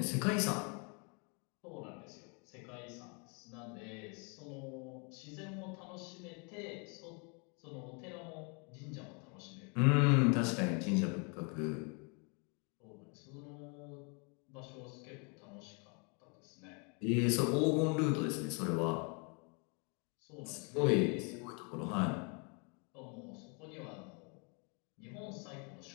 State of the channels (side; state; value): right; quieter; 34.6 dB